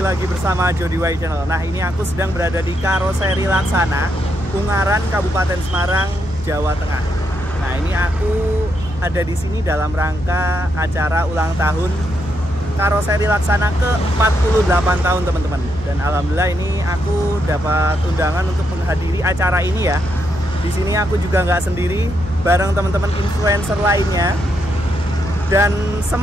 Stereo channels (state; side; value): normal; both; correlation 0.80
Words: lagi bersama Jody Y Channel. Nah, ini aku sedang berada di Karoseri Laksana, Ungaran, Kabupaten Semarang, Jawa Tengah. Nah, ini aku ada di sini dalam rangka acara ulang tahun Karoseri Laksana ke-48 tahun, teman-teman. Dan alhamdulillah ini aku dapat undangan untuk menghadiri acara ini ya. Di sini aku juga nggak sendiri, bareng teman-teman influencer lainnya. Dan